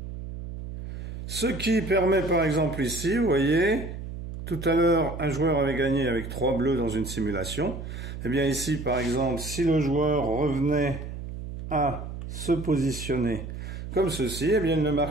Ce qui permet par exemple ici, vous voyez, tout à l'heure, un joueur avait gagné avec 3 bleus dans une simulation. Eh bien ici, par exemple, si le joueur revenait à se positionner comme ceci, eh bien il ne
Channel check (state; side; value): noise; right; hum, 9 dB below the sound